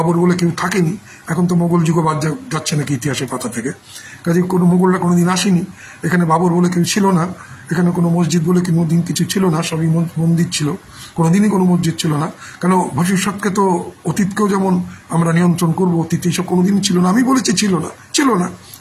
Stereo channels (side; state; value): both; identical; correlation 1.00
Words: বলে কেউ থাকেনি। এখন তো মোগল যুগও বাদ যাচ্ছে নাকি ইতিহাসের পাতা থেকে, কাজে কোনো মোগলরা কোনোদিন আসেনি। এখানে বাবর বলে কেউ ছিল না, এখানে কোনো মসজিদ বলে কোনোদিন কিছু ছিল না, সবই মন্দির ছিল, কোনোদিনই কোনো মসজিদ ছিল না। কেন ভবিষ্যৎকে তো অতীতকেও যেমন আমরা নিয়ন্ত্রণ করবো, অতীত এইসব কোনোদিনই ছিল না। আমি বলেছি ছিল না,